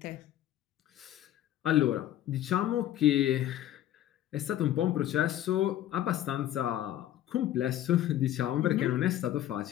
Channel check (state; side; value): quieter; right; 12.5 dB